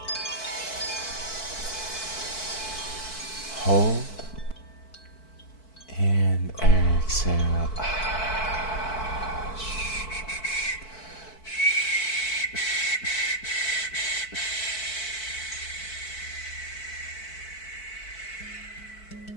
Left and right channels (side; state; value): right; late; 4.5 ms